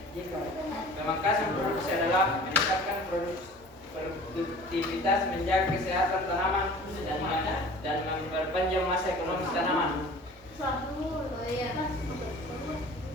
baca. Pemangkasan produksi adalah meningkatkan produktivitas, menjaga kesehatan tanaman, dan memperpanjang masa ekonomis tanaman. Suatu. Oh iya. Terima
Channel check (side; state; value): both; normal; correlation 0.45